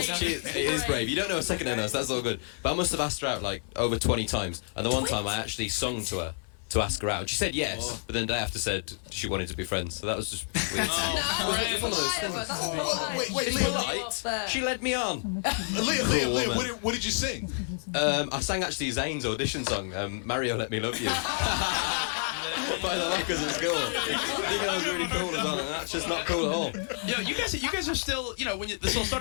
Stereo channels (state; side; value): silent; right; digital silence